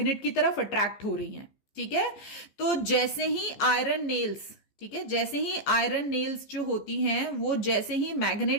की तरफ अट्रैक्ट हो रही हैं, ठीक है. तो जैसे ही आयरन नेल्स, ठीक है, जैसे ही आयरन नेल्स जो होती हैं वो जैसे ही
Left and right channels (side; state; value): right; late; 15 ms